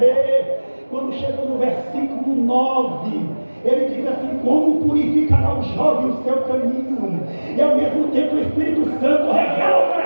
Quando chegou no versículo 9, ele diz assim: como purificará o jovem o seu caminho? E ao mesmo tempo o Espírito Santo revela o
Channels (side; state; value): both; inverted; correlation -1.00